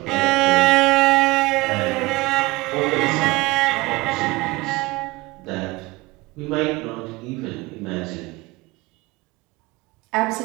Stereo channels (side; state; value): left; quieter; 21.3 dB